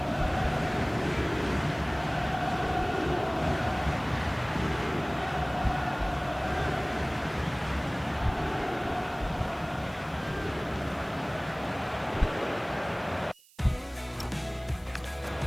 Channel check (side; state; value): right; noise; hiss, 27 dB below the sound